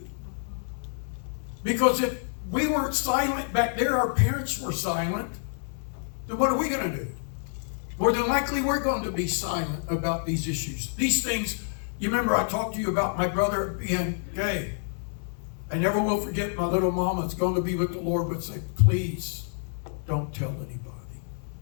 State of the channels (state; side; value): silent; right; digital silence